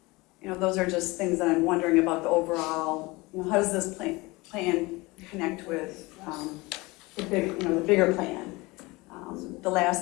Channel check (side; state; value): right; quieter; 23.1 dB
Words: Those are just things that I'm wondering about the overall, how does this plan connect with the bigger plan? The